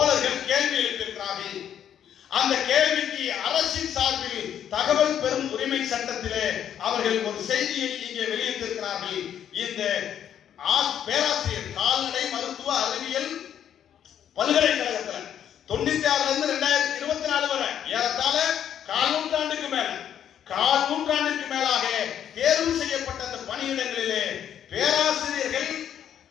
கேள்வி எழுப்பியிருக்கிறார்கள். அந்த கேள்விக்கு அரசின் சார்பில் தகவல் பெறும் உரிமை சட்டத்திலே அவர்கள் ஒரு செய்தியை இங்கே வெளியிட்டிருக்கிறார்கள். இந்த பேராசிரியர் கால்நடை மருத்துவ அறிவியல் பல்கலைக்கழகத்தில் 96 இருந்து 2024 வரை ஏறத்தாழ கால் நூற்றாண்டுக்கு மேலாக தேர்வு செய்யப்பட்ட அந்த பணியிடங்களிலே பேராசிரியர்கள்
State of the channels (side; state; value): right; quieter; 9.6 dB